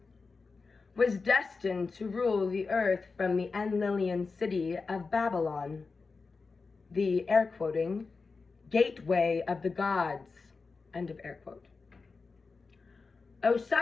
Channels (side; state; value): right; quieter; 4.4 dB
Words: was destined to rule the earth from the Enlilian city of Babylon, the, air quoting, gateway of the gods, end of air quote.